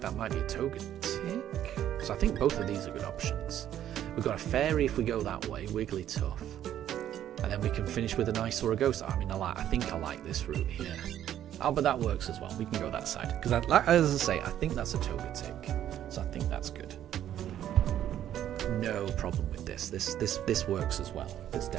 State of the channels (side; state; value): left; quieter; 11.2 dB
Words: that might be a Togetic. So I think both of these are good options. We've got a Fairy if we go that way, Wigglytuff. And then we can finish with a nice or a Ghost. I mean, I think I like this route here. Oh, but that works as well. We can go that side. Because, as I say, I think that's a Togetic. So I think that's good. No problem with this. This works as well. This